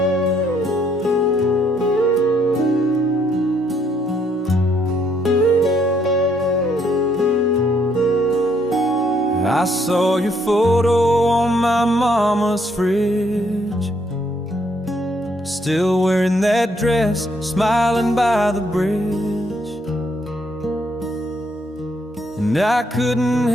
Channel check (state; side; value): normal; both; correlation 0.70